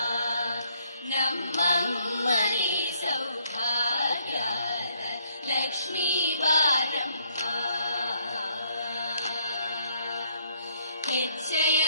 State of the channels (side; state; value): both; inverted; correlation -0.68